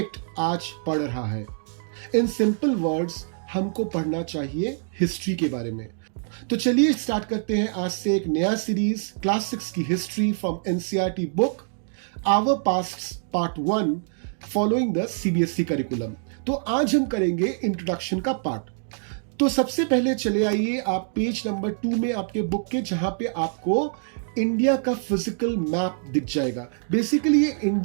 आज पड़ रहा है। इन सिंपल वर्ड्स हमको पढ़ना चाहिए हिस्ट्री के बारे में। तो चलिए स्टार्ट करते हैं आज से एक नया सीरीज, क्लास 6 की history from NCERT book our past part 1 following the CBSE curriculum. तो आज हम करेंगे इंट्रोडक्शन का पार्ट। तो सबसे पहले चले आइए आप पेज नंबर 2 में आपके बुक के, जहां पे आपको इंडिया का फिजिकल मैप दिख जाएगा। बेसिकली ये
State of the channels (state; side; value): silent; left; digital silence